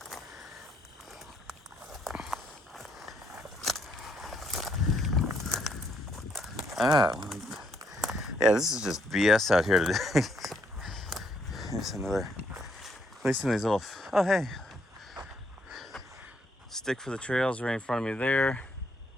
Yeah, this is just BS out here today. There's another, at least in these little, oh hey, stick for the trails right in front of me there.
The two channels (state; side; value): normal; both; correlation 0.73